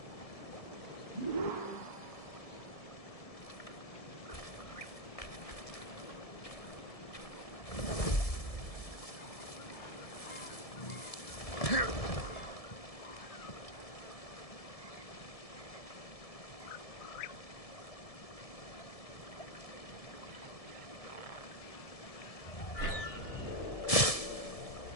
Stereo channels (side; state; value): right; late; 1.7 ms